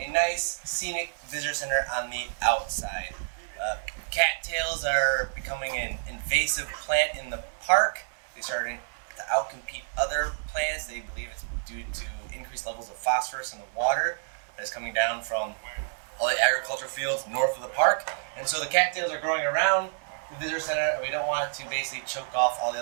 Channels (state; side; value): silent; left; 59 dB below the other